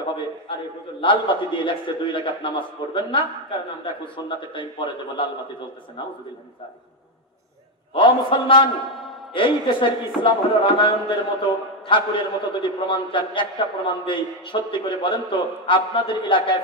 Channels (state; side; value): normal; both; correlation 0.06